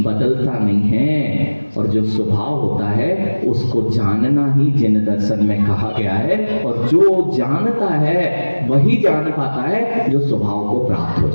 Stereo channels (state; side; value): inverted; both; correlation -1.00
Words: बदलता नहीं है, और जो स्वभाव होता है उसको जानना ही जिन दर्शन में कहा गया है। और जो जानता है वही जान पाता है जो स्वभाव को प्राप्त हो